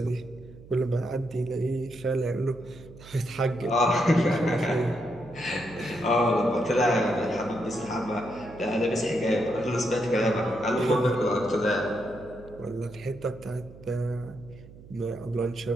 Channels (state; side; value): noise; right; hum, 19 dB below the sound